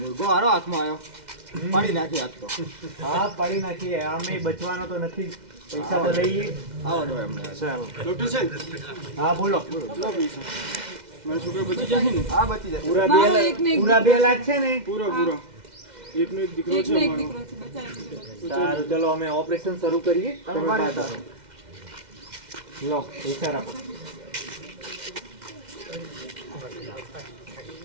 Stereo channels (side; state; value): left; late; 2.1 ms